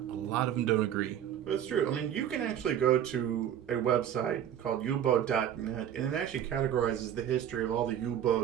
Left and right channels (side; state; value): left; quieter; 9.9 dB